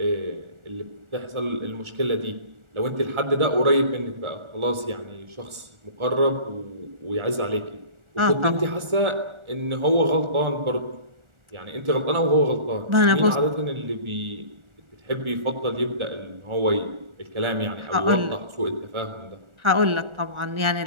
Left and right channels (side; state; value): left; late; 1.4 ms